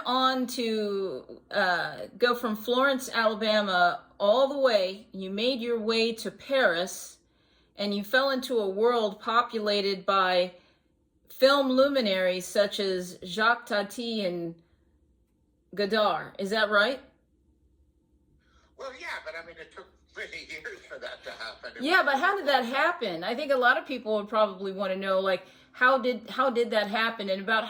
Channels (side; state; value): both; identical; correlation 1.00